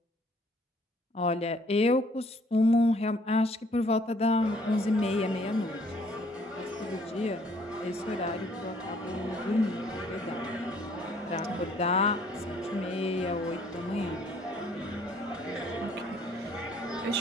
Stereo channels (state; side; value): normal; both; correlation 0.61